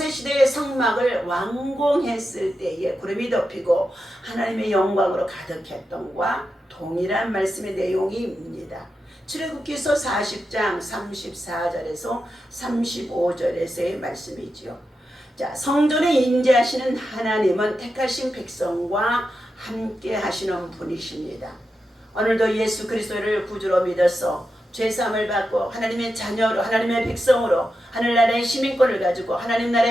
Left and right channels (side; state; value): both; normal; correlation 0.89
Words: 성막을 완공했을 때에 구름이 덮이고 하나님의 영광으로 가득했던과 동일한 말씀의 내용입니다. 출애굽기서 40장 34절에서 35절에서의 말씀이지요. 성전에 임재하시는 하나님은 택하신 백성과 함께 하시는 분이십니다. 오늘도 예수 그리스도를 구주로 믿어서 죄사함을 받고 하나님의 자녀로 하나님의 백성으로 하늘나라의 시민권을 가지고 하나님